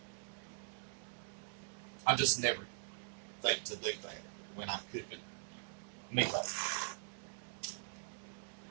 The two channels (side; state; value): left; silent; digital silence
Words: I just never think to do that when I'm cooking meatloaf.